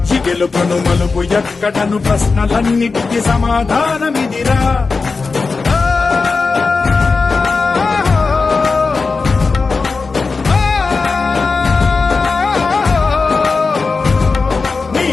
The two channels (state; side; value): quieter; right; 4.3 dB